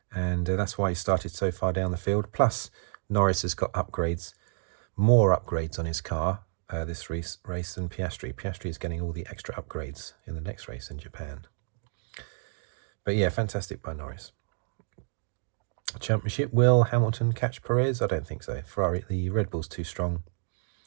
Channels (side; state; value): left; silent; digital silence